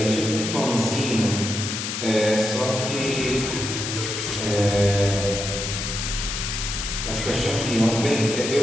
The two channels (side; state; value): left; noise; hiss, 4 dB below the sound